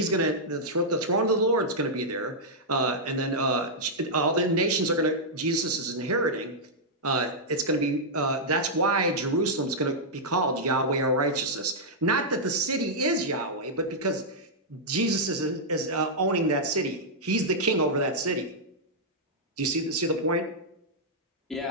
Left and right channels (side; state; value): both; normal; correlation -0.08